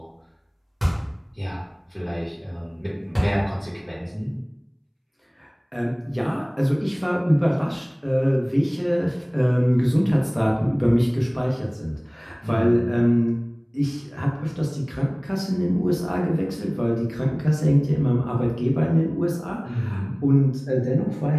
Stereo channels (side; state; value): both; identical; correlation 1.00